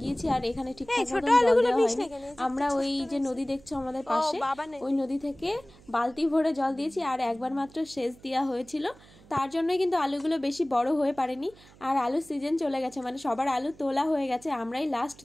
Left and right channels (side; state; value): right; noise; hum, 24 dB below the sound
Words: আর এখানে ঠিকঠাক মতো জল দেওয়া হয়নি। আমরা ওই যে নদী দেখছো আমাদের পাশে, ওই নদী থেকে বালতি ভরে জল দিয়েছি, আর একবার মাত্র সেচ দেওয়া হয়েছিল। তার জন্যই কিন্তু আলুগুলো বেশি বড় হয়ে পারেনি। আর আলুর সিজন চলে গেছে, মানে সবার আলু তোলা হয়ে গেছে, আমরাই লাস্ট